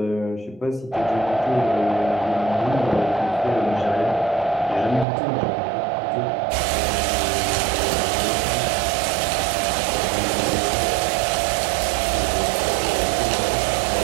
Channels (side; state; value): left; drops out; at 5.1 s